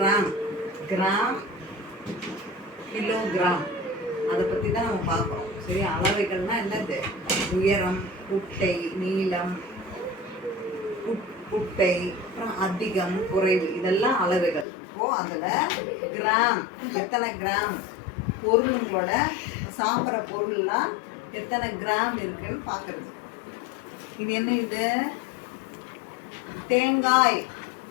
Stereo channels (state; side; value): drops out; right; at 14.7 s